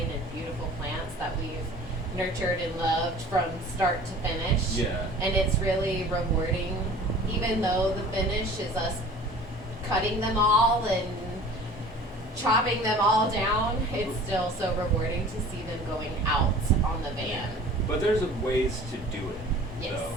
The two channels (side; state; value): both; normal; correlation 0.45